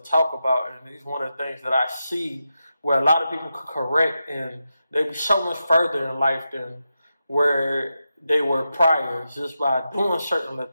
about, and it's one of the things that I see where a lot of people could correct, and they'd be so much further in life than where they were prior, just by doing certain little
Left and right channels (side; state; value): both; inverted; correlation -0.89